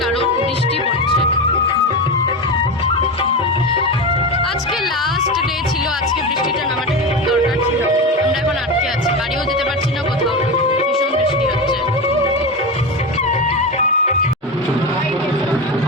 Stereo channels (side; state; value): both; normal; correlation 0.19